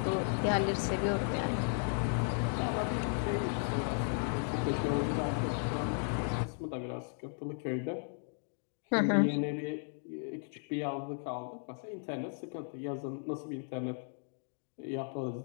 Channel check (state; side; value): silent; right; 54 dB below the other